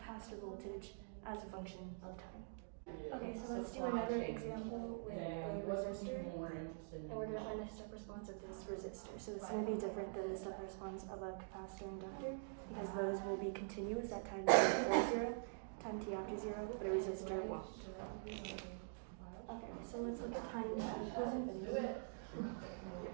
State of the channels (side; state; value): left; silent; digital silence